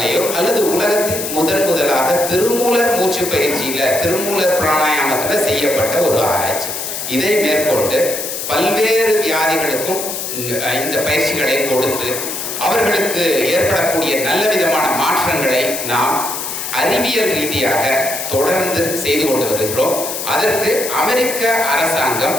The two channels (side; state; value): left; noise; hiss, 5 dB below the sound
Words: அல்லது உலகத்தில் முதலாக திருமூலர் மூச்சு பயிற்சியில, திருமூலர் பிராணாயாமத்தில் செய்யப்பட்ட ஒரு ஆராய்ச்சி. இதை மேற்கொண்டு பல்வேறு வியாதிகளுக்கும் இந்த பயிற்சிகளை கொடுத்து அவர்களுக்கு ஏற்படக்கூடிய நல்ல விதமான மாற்றங்களை நாம் அறிவியல் ரீதியாக தொடர்ந்து செய்து கொண்டு வருகிறோம். அதற்கு அமெரிக்க அரசாங்கம்,